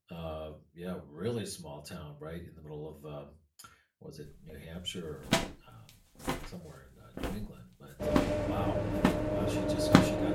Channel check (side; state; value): both; identical; correlation 1.00